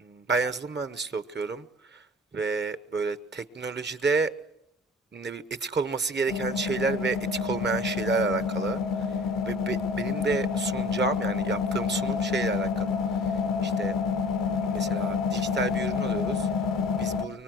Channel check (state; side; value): normal; both; correlation 0.45